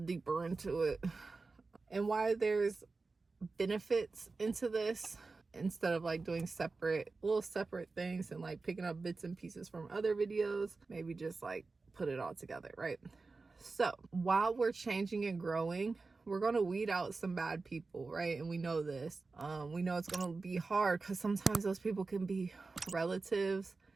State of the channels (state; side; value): quieter; left; 3.9 dB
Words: deeper into it and why there's benefits into this, instead of like doing little separate things and like picking up bits and pieces from other videos. Maybe just like put it all together, right? So while we're changing and growing, we're going to weed out some bad people, right? And we know this. We know it's going to be hard because sometimes those people can be relatives,